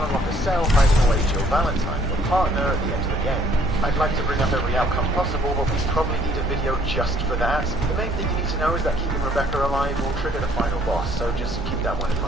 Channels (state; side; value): noise; left; hum, 12 dB below the sound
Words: unlock a cell hiding away Jill Valentine, your partner, at the end of the game. I'd like to bring up every outcome possible, but we probably need a video just for that. The main thing you need to know is that keeping Rebecca alive will trigger the final boss, so just keep that one in